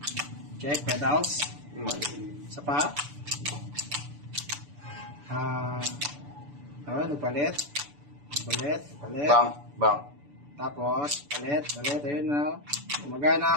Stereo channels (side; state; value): left; late; 6.9 ms